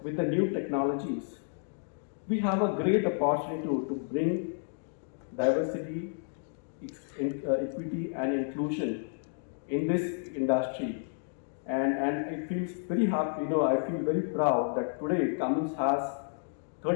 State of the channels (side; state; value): right; silent; digital silence